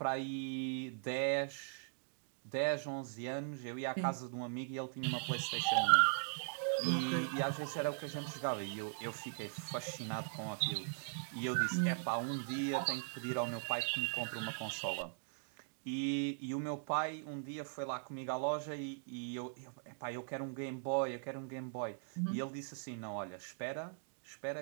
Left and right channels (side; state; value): left; silent; digital silence